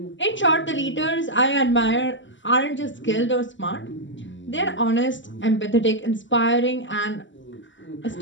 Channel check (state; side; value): late; right; 0.54 ms